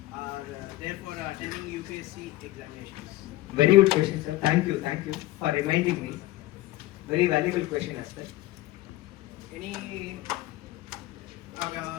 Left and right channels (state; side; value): quieter; right; 16.8 dB